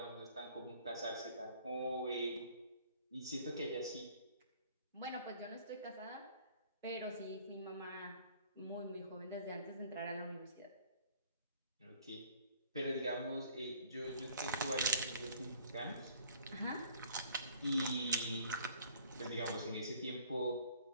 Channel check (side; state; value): both; inverted; correlation -0.56